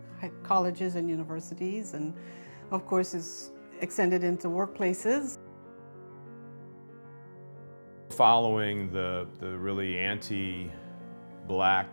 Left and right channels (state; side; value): inverted; both; correlation -1.00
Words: colleges and universities, and of course is extended into workplaces. Following the really anti-Black